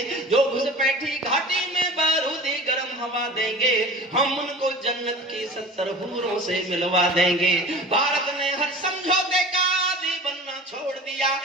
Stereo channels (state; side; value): normal; both; correlation 0.37